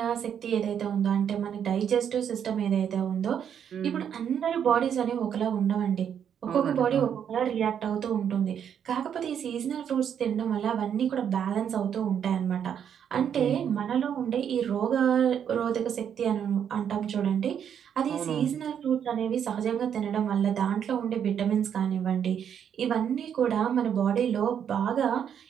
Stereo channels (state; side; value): quieter; left; 8.5 dB